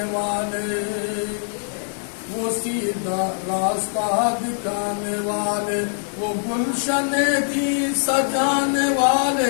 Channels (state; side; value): silent; right; 57 dB below the other